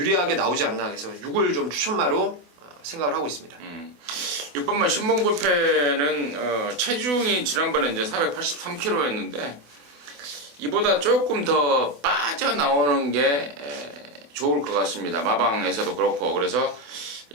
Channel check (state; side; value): late; left; 24 ms